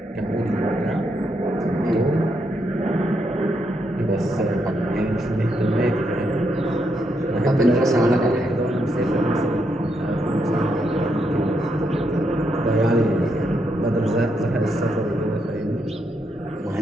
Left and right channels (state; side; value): normal; both; correlation 0.79